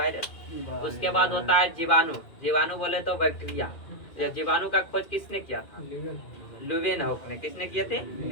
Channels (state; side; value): late; right; 2.4 ms